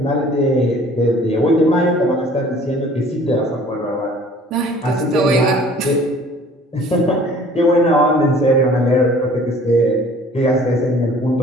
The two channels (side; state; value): both; normal; correlation 0.51